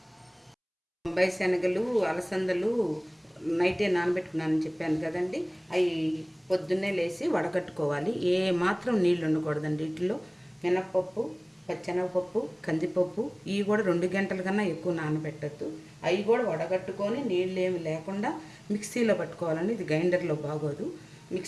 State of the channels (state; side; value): identical; both; correlation 1.00